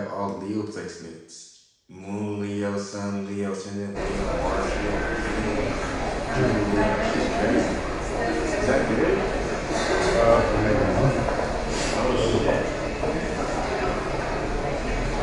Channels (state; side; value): identical; both; correlation 1.00